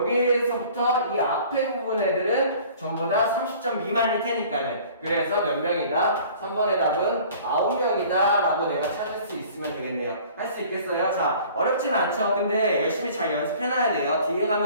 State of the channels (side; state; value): both; inverted; correlation -0.49